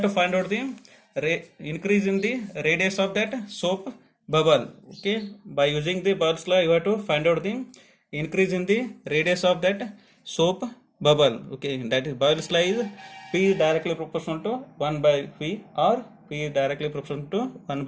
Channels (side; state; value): both; identical; correlation 1.00